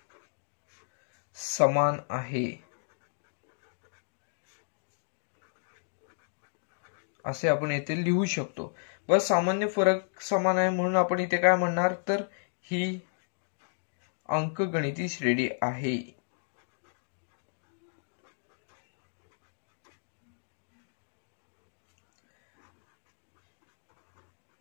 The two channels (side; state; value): right; silent; digital silence